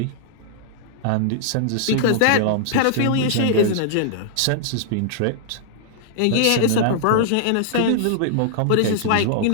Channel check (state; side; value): different; both; correlation -0.01